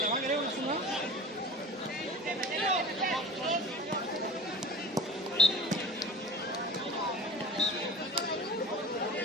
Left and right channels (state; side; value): normal; both; correlation 0.37